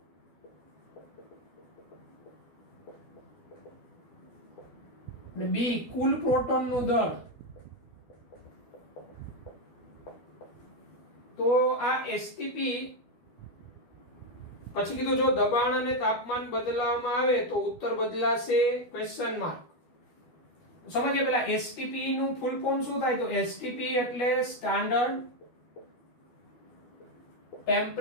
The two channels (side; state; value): right; late; 12 ms